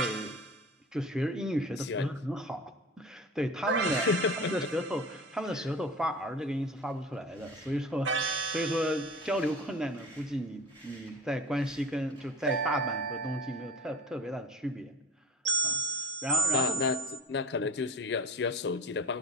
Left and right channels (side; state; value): both; normal; correlation 0.35